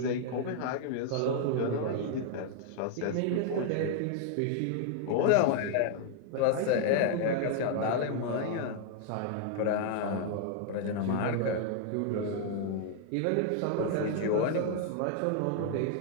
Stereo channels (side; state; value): both; different; correlation 0.00